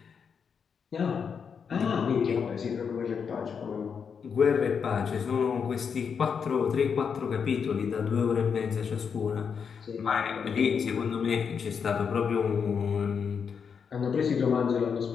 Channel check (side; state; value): right; quieter; 6.5 dB